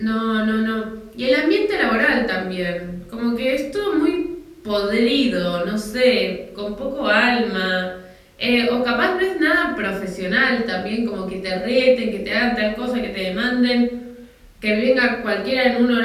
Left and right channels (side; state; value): both; identical; correlation 1.00